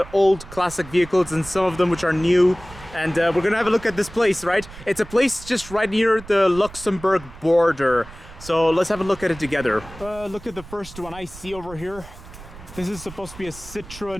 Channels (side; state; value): right; noise; rumble, 17 dB below the sound